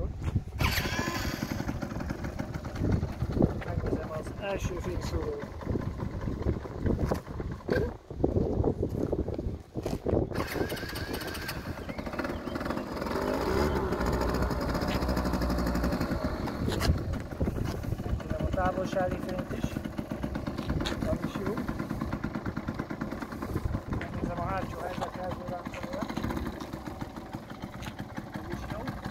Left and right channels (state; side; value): identical; both; correlation 1.00